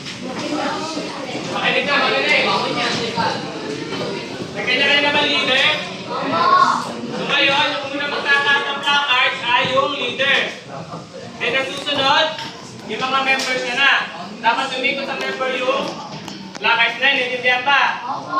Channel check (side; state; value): both; identical; correlation 1.00